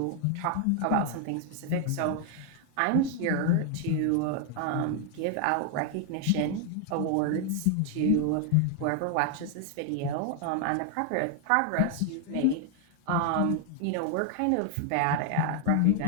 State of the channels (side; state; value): both; different; correlation 0.00